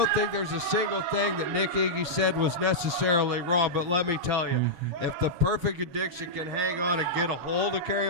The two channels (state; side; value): late; left; 7.1 ms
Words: think there's a single thing that Nick Iggy said was necessarily wrong, but let me tell you, if the Perfect Addiction can hang on and get a hold of